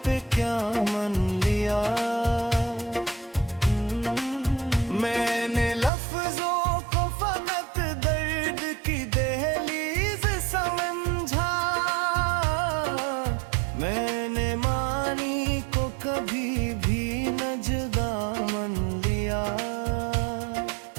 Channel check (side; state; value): left; drops out; at 5.9 s